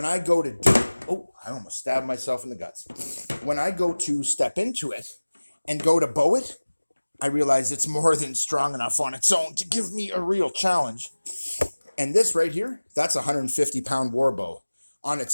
I go to do, oh, I almost stabbed myself in the guts. When I go to step into it and go to bow it, I realize it's more than strong enough on its own to give me a real challenge. And this right here, that's a 150-pound war bow on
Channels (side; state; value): both; inverted; correlation -1.00